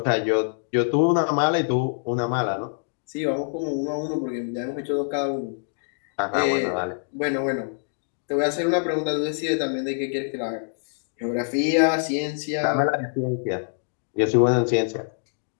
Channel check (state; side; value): silent; right; digital silence